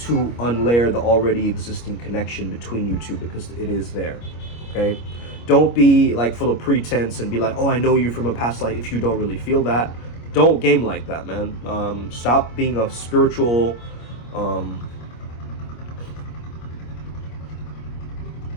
unlayer the already existing connection between you two, because it is there, okay? Don't be like full of pretense and be like, oh, I know you from a past life, if you don't really feel that. Don't game like that, man. Stop being a spiritual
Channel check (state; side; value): late; right; 25 ms